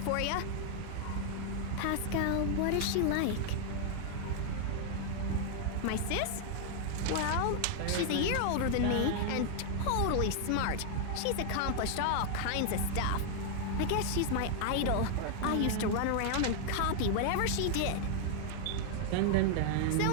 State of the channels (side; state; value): both; different; correlation 0.00